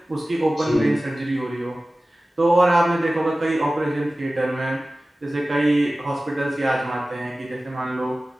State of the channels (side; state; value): both; normal; correlation 0.96